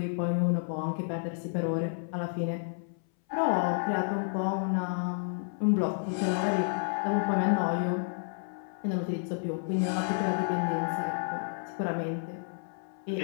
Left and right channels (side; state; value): right; silent; 57 dB below the other